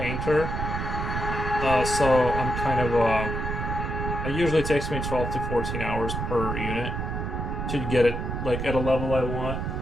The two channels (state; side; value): noise; right; rumble, 3 dB below the sound